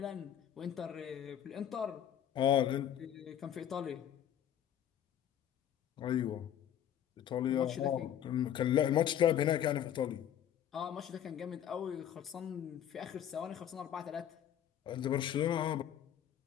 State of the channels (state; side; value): quieter; right; 10.1 dB